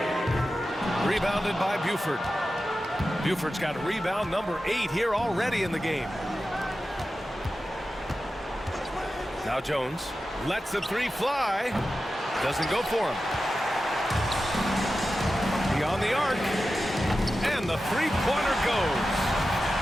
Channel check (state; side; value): normal; both; correlation 0.93